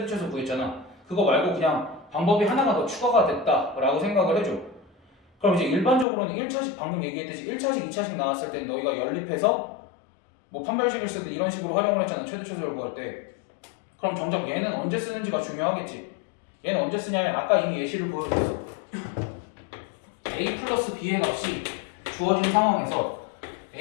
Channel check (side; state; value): right; drops out; at 6.1 s